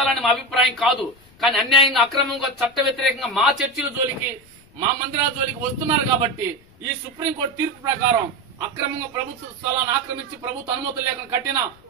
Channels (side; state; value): left; noise; rumble, 29 dB below the sound